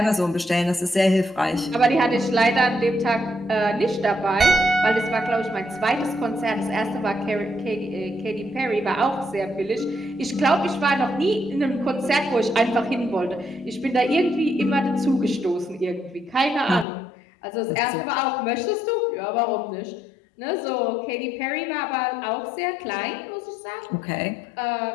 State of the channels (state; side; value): drops out; right; at 16.9 s